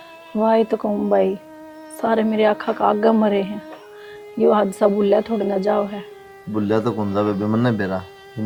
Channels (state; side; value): identical; both; correlation 1.00